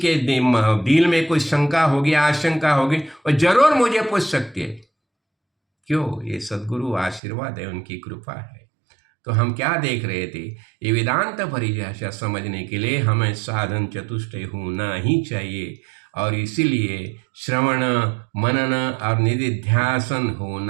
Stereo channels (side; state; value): left; drops out; at 7.2 s